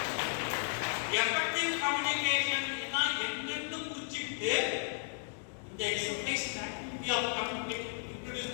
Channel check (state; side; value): silent; right; 55 dB below the other